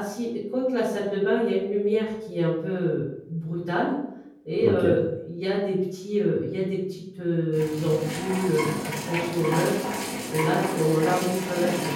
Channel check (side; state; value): both; identical; correlation 1.00